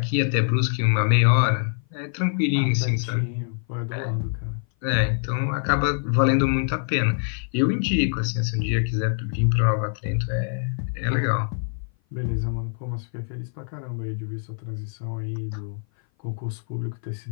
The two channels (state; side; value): silent; right; 57 dB below the other